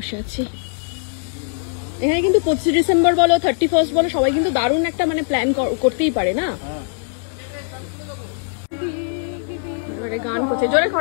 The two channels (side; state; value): right; silent; digital silence